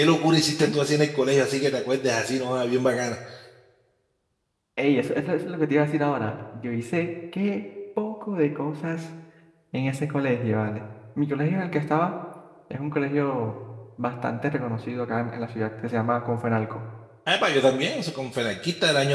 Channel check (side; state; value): both; identical; correlation 1.00